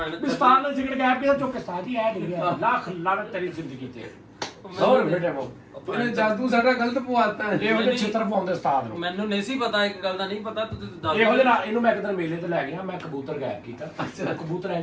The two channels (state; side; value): identical; both; correlation 1.00